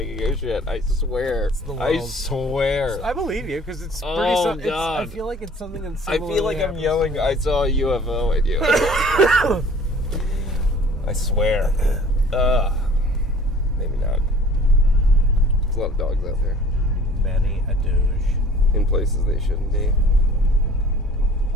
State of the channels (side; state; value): both; normal; correlation 0.50